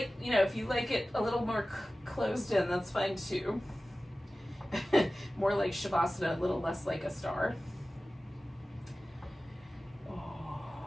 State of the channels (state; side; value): normal; both; correlation 0.96